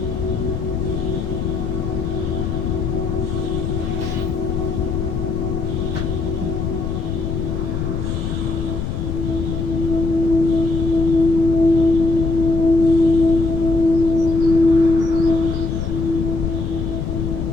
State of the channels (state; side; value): noise; left; rumble, 2 dB below the sound